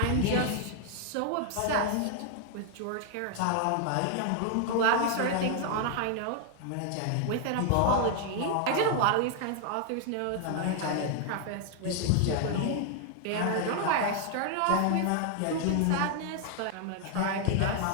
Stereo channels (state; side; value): different; both; correlation 0.00